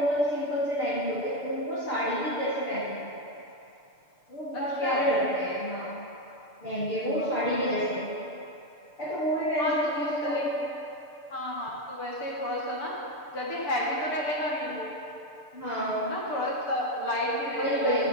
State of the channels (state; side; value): late; right; 6.8 ms